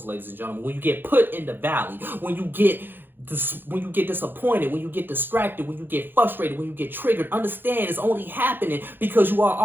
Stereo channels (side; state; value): left; late; 0.098 ms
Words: ladies and gentlemen, when you get put in the valley, when you get disappointed, when you get distracted, when you get frustrated, when you get triggered, understand it's only happening because you are